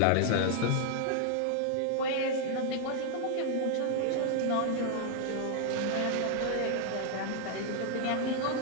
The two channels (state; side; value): different; both; correlation 0.00